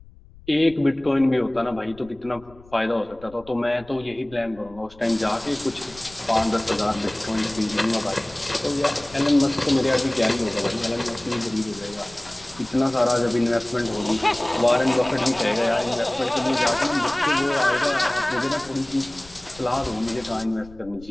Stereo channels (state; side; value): noise; left; rumble, 23 dB below the sound